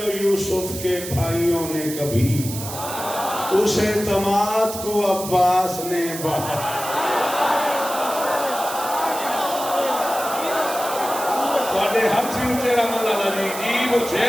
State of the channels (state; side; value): noise; right; hiss, 9 dB below the sound